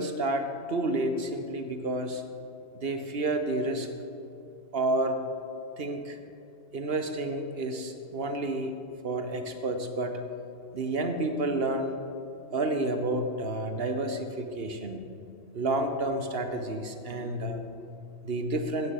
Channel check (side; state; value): left; late; 2.8 ms